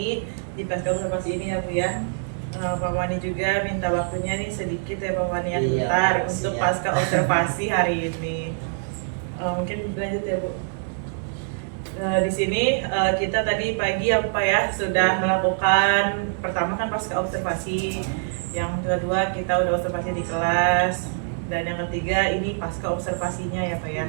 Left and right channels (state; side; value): silent; left; digital silence